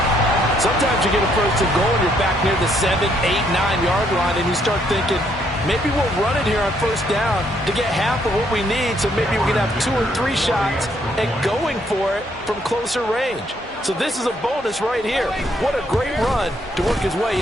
Sometimes you get a 1st and goal and you're back near the 7, 8, 9-yard line, and you start thinking, maybe we'll run it here on 1st down to get half of what we need, so maybe we can have 2 or 3 shots and going for it from closer range. So this is a bonus right here. What a great run to work his way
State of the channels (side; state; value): both; normal; correlation 0.70